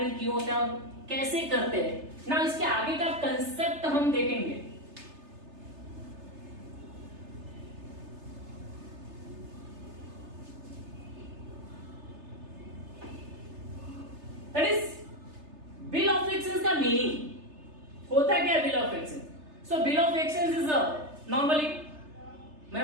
क्यों होता है और कैसे करते हैं. ना इसके आगे का कंसेप्ट हम देखेंगे. That is bill of exchange का मीनिंग होता क्या है, bill of exchange. So bill of exchange is normally,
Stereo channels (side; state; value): left; late; 3.3 ms